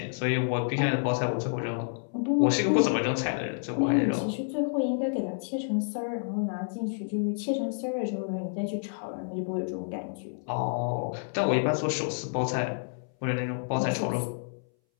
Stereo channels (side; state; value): right; silent; 59 dB below the other